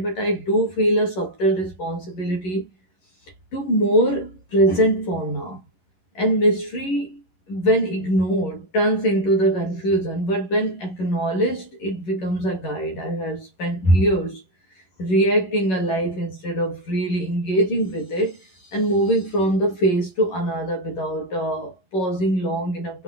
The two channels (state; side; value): late; right; 11 ms